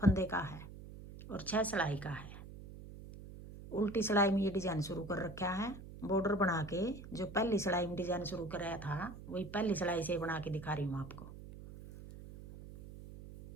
का है और 6 सिलाई का है। उल्टी सिलाई में ये डिज़ाइन शुरू कर रखा है। बॉर्डर बना के जो पहली सिलाई में डिज़ाइन शुरू कराया था वही पहली सिलाई से बना के दिखा रही हूँ आपको।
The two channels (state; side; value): noise; right; hum, 14 dB below the sound